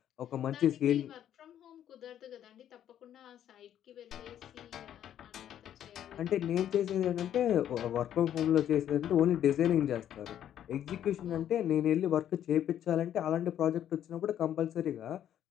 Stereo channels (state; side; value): quieter; right; 10.6 dB